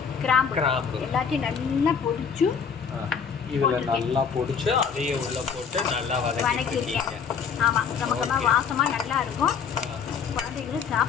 கிராம்பு எல்லாத்தையும் நல்லா பொடிச்சு இதில் நல்லா பொடிச்சு அதையும் உள்ளே போட்டு நல்லா வதக்கிருக்கீங்க. ஆமாம், கமகமாக வாசமாக நல்லா இருக்கும். குழந்தைங்களும்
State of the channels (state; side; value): quieter; right; 6.6 dB